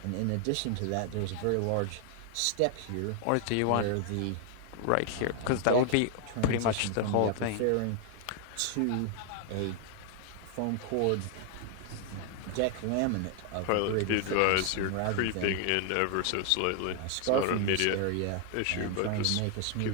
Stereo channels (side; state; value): both; different; correlation 0.00